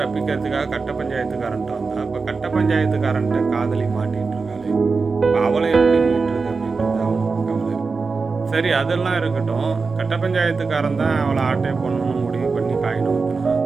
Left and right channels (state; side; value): quieter; left; 4.5 dB